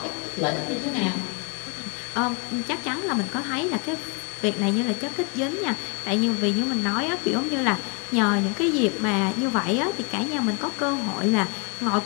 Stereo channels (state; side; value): quieter; right; 34.2 dB